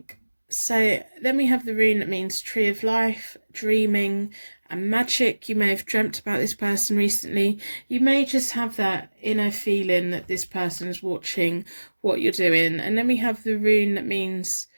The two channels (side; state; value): both; inverted; correlation -1.00